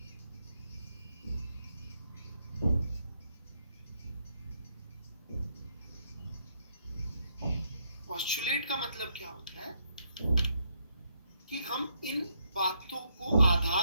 पोस्टुलेट का मतलब क्या होता है कि हम इन बातों को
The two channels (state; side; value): inverted; both; correlation -0.76